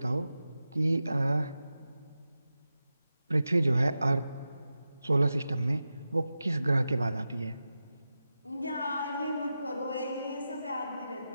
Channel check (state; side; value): inverted; both; correlation -0.91